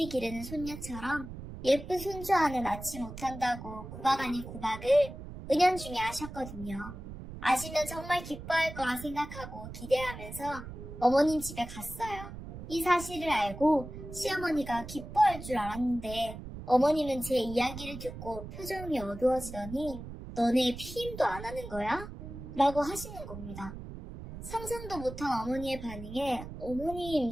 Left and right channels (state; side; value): noise; right; rumble, 11 dB below the sound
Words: 기르는 손녀처럼 예쁜 손주 하나 낳지 못한다고 구박 아닌 구박을 은연중에 하셨거든요. 아시면 정말 기뻐할 거라 생각하고 기대하면서 어머님 집에 갔어요. 이 사실을 알고 시어머니가 기뻐할 줄 알았는데 어머님은 제 이야기를 듣고 표정이 어두워지더니 너네 피임도 안 하는 거야? 라고 하시는 겁니다. 상상도 못한 어머니의 반응에 어머님